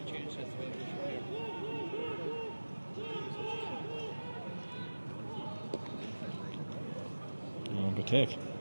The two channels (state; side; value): inverted; both; correlation -1.00